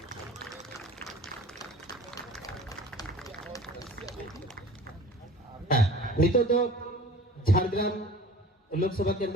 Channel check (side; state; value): both; normal; correlation 0.44